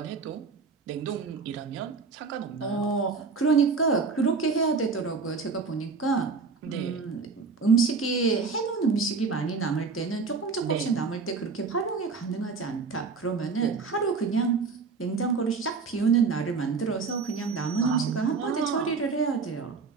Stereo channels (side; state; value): left; quieter; 4.8 dB